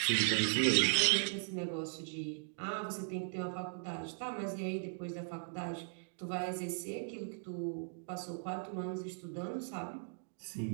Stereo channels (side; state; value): left; silent; digital silence